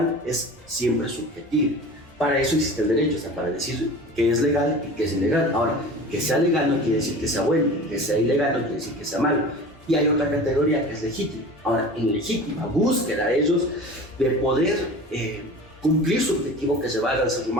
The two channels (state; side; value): normal; both; correlation 0.37